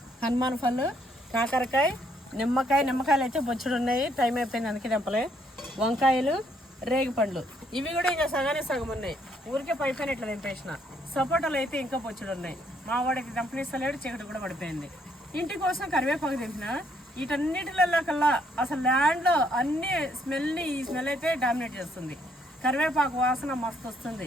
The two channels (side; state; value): both; normal; correlation 0.70